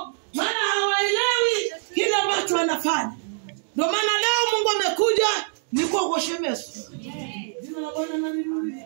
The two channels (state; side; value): silent; left; digital silence